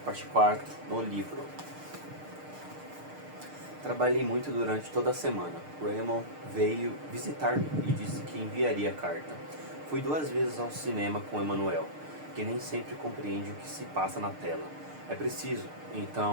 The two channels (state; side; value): late; left; 6.6 ms